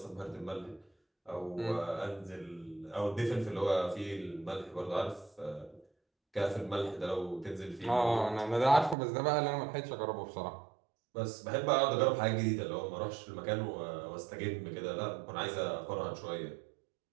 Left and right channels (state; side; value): drops out; left; at 9.0 s